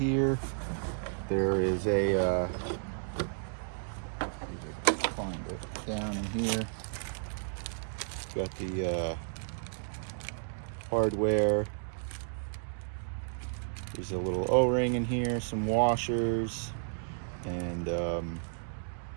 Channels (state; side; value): silent; left; digital silence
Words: There is a find it down in here. Got the hardware. There's a little O-ring in here, some washers, and